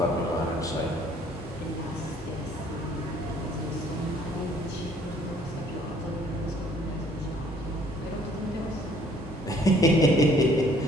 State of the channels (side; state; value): both; normal; correlation 0.60